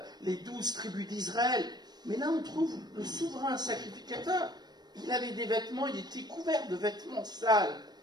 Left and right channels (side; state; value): left; late; 0.20 ms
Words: les 12 tribus d'Israël. Mais là on trouve le souverain sacrificateur, il avait des vêtements, il était couvert de vêtements sales,